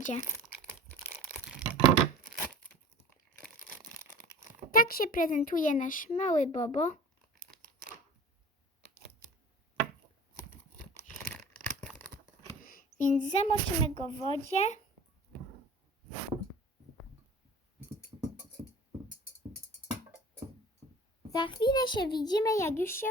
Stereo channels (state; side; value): normal; both; correlation 0.43